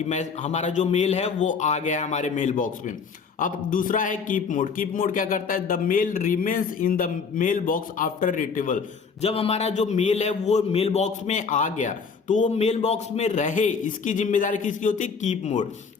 मैं हमारा जो मेल है वो आ गया है हमारे मेल बॉक्स में। अब दूसरा है कीप मोड। कीप मोड क्या करता है? The mail remains in the mail box after retrieval. जब हमारा जो मेल है वो मेल बॉक्स में आ गया तो वो मेल बॉक्स में रहे, इसकी जिम्मेदारी किसकी होती है? Keep mode.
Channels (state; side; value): quieter; right; 5.6 dB